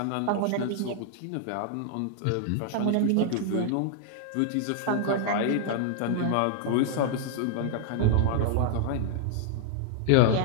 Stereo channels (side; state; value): both; different; correlation -0.01